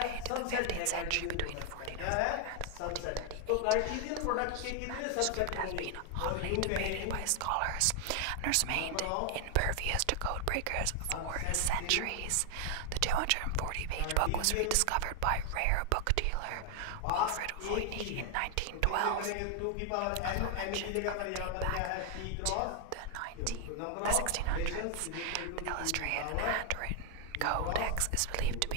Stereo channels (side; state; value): both; different; correlation 0.00